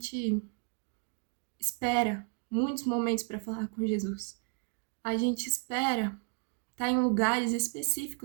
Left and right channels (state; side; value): quieter; left; 35.4 dB